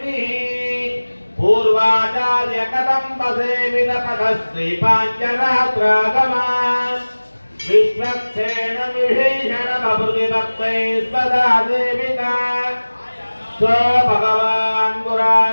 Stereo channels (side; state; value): both; inverted; correlation -1.00